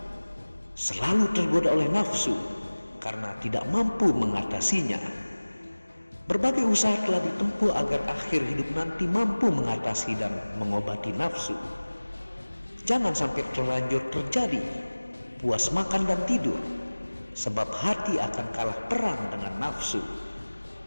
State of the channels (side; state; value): both; inverted; correlation -1.00